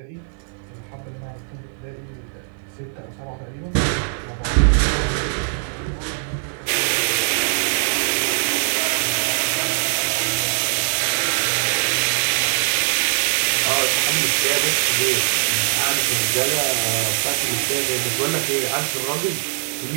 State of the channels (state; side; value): silent; left; digital silence